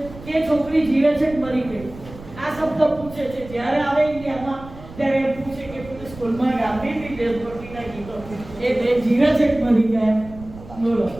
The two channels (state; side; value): noise; right; rumble, 17 dB below the sound